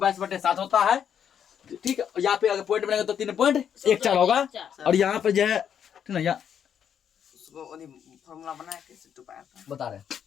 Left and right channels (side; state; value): right; quieter; 8.5 dB